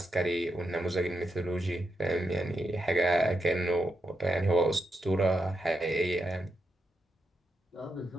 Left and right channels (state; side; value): normal; both; correlation 0.85